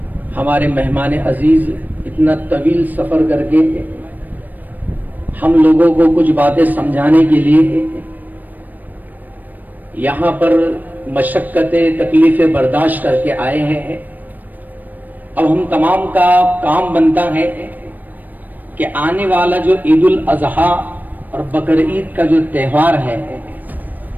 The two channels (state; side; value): late; left; 0.086 ms